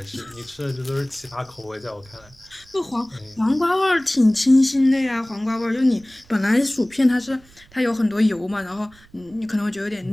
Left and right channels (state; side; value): noise; right; rumble, 27 dB below the sound